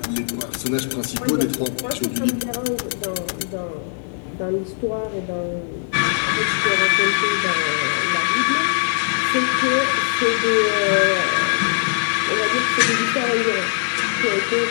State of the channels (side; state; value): right; silent; 65 dB below the other